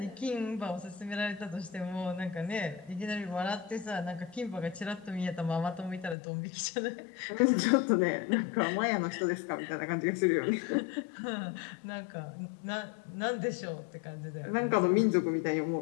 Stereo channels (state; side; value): drops out; right; at 6.2 s